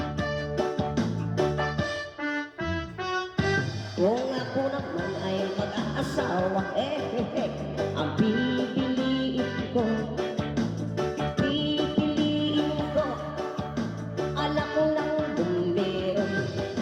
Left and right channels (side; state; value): both; identical; correlation 1.00